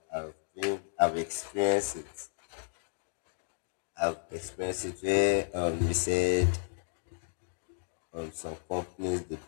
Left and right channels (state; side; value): silent; right; 56 dB below the other